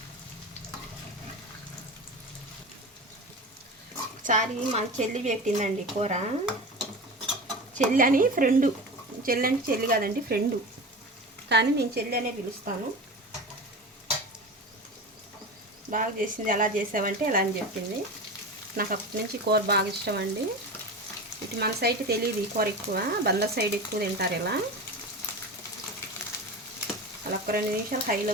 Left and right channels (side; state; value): both; normal; correlation 0.29